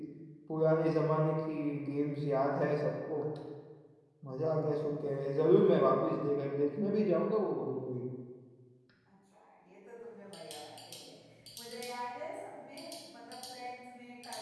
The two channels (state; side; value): identical; both; correlation 1.00